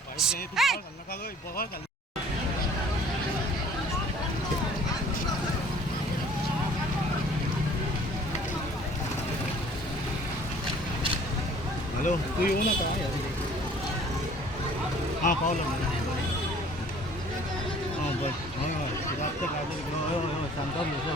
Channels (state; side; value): normal; both; correlation 0.53